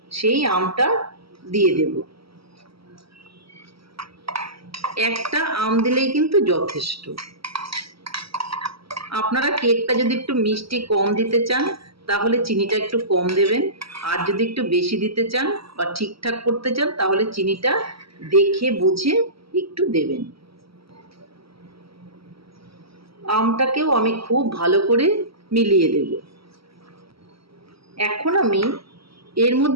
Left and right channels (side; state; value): left; late; 0.75 ms